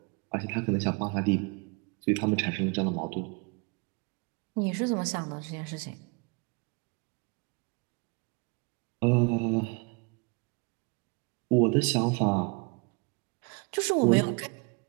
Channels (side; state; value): left; quieter; 31.6 dB